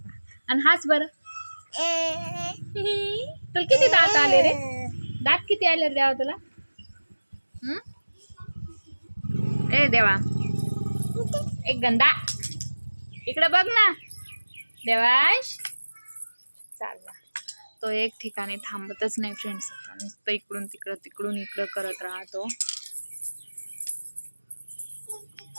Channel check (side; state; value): both; inverted; correlation -1.00